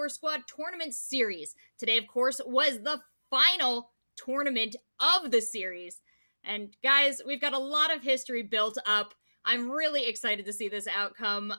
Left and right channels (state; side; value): inverted; both; correlation -1.00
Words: Squad Tournament Series. Today, of course, was the final tournament of the series. And guys, we've got a lot of history built up. I'm really excited to see this outcome.